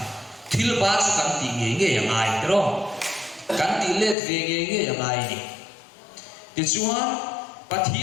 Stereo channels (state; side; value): drops out; right; at 4.2 s